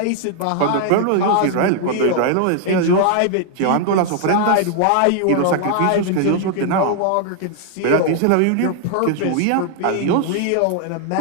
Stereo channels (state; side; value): different; both; correlation 0.00